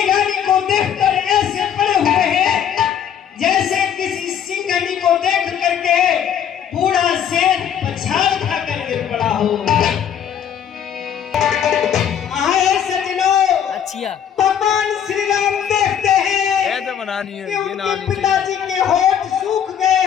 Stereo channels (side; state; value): right; quieter; 8.8 dB